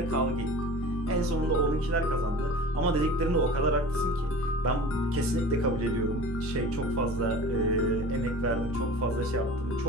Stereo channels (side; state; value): both; normal; correlation 0.39